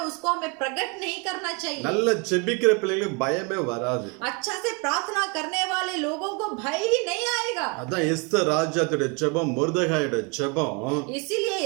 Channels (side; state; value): left; quieter; 31.4 dB